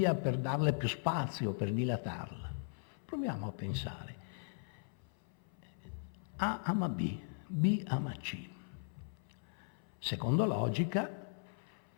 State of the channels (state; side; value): silent; right; 52 dB below the other